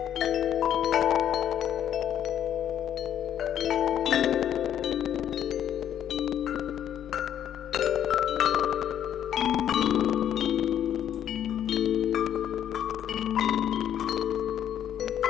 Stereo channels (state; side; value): quieter; right; 10.1 dB